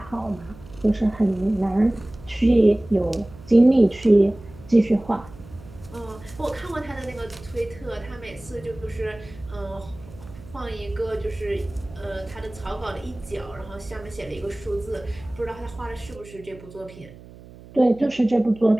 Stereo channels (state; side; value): noise; right; hum, 19 dB below the sound